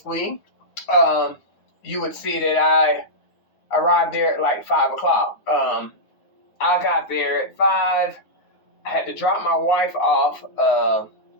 you would see that I arrived there at like 5 o'clock. I got there at 5. I had to drop my wife off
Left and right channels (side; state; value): right; late; 9.5 ms